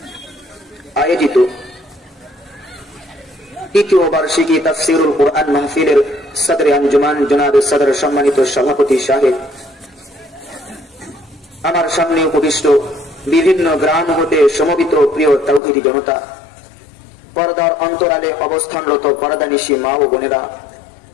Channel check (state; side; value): drops out; right; at 15.6 s